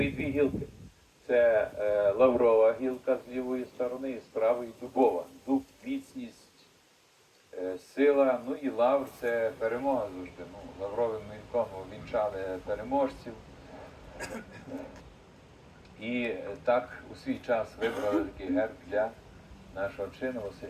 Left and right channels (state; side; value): identical; both; correlation 1.00